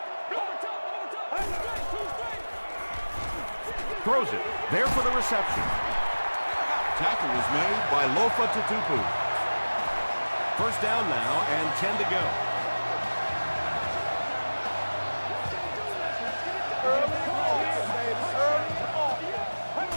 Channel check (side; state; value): both; inverted; correlation -1.00